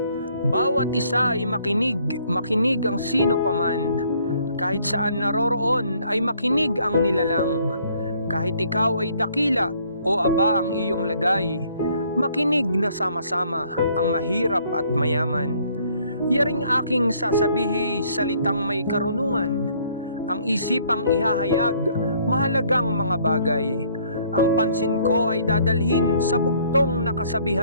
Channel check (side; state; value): both; inverted; correlation -0.63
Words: Bawat isa ay makinig ang sino paman. Kahit saan naroroon ay makinig ang nilalang. Kahit ikaw ay dakila o aba ang iyong lagay, makinig na sama-sama ang mahirap at mayaman. Yaring aking sasabihi salitang may karunungan. Ang isipang ihahayag, mahalagang mga bagay. Ang pansin ko ay dadalhin sa bugtong na